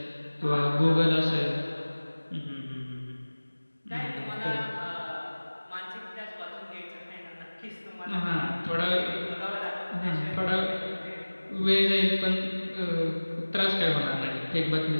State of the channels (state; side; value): inverted; both; correlation -1.00